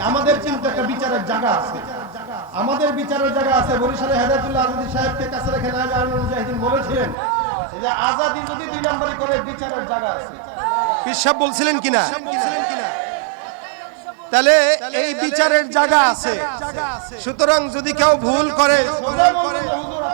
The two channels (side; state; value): left; drops out; at 7.2 s